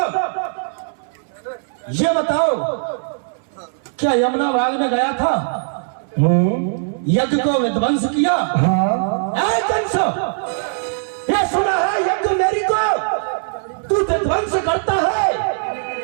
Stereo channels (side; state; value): left; silent; 66 dB below the other